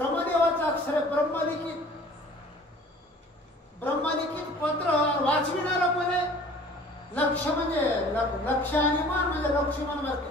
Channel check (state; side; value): normal; both; correlation 0.48